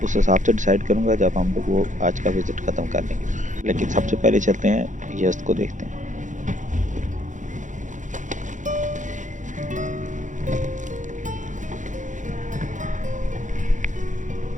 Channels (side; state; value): left; late; 0.36 ms